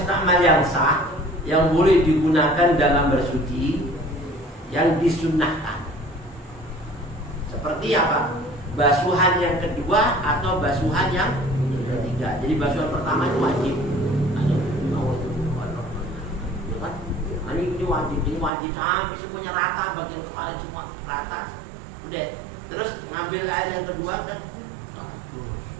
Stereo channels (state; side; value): drops out; left; at 18.5 s